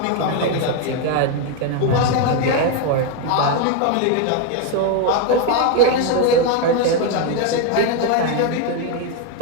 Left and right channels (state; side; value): different; both; correlation 0.01